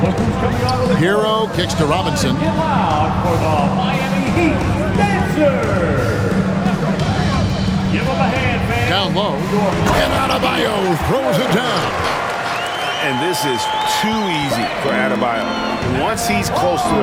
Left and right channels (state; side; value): identical; both; correlation 1.00